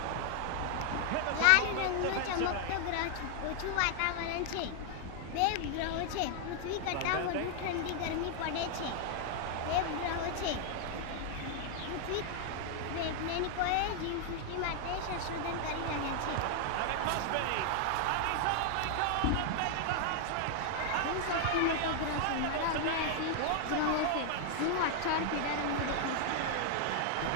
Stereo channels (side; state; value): both; different; correlation 0.00